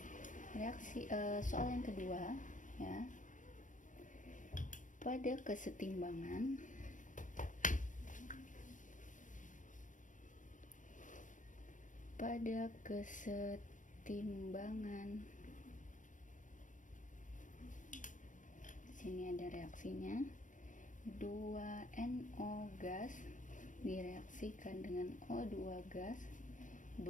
Reaksi soal yang kedua ya, pada kesetimbangan sini ada reaksinya, 2NO gas direaksikan dengan O2 gas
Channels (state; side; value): late; right; 0.37 ms